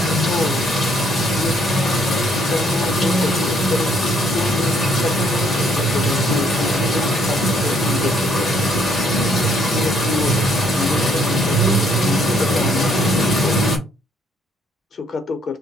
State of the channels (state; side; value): normal; both; correlation 0.67